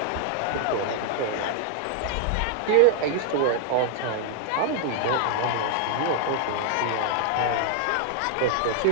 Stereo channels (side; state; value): both; different; correlation -0.01